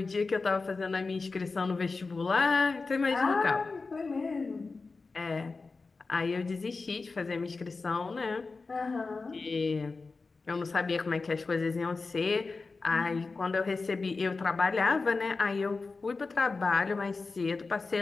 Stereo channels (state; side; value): quieter; right; 4.0 dB